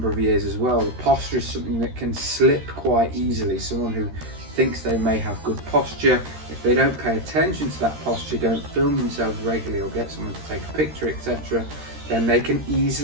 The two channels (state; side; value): late; left; 13 ms